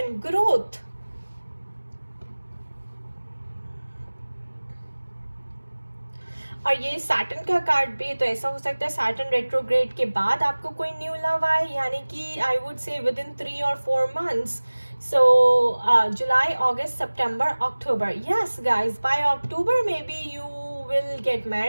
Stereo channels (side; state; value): both; inverted; correlation -1.00